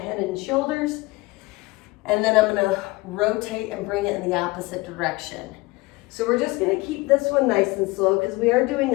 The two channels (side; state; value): right; quieter; 22.4 dB